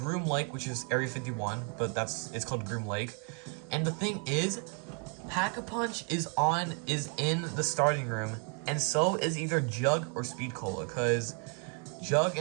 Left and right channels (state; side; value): quieter; left; 38.2 dB